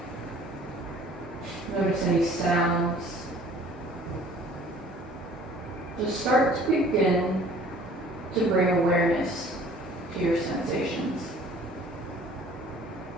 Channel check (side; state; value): both; normal; correlation 0.52